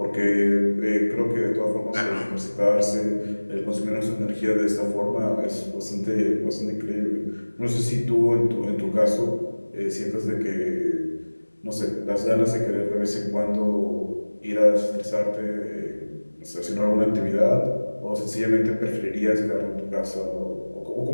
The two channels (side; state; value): both; inverted; correlation -1.00